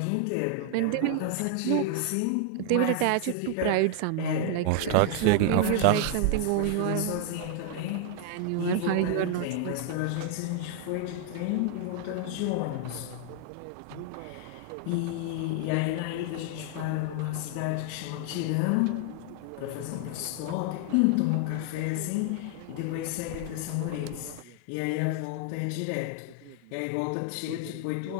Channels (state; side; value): different; both; correlation 0.00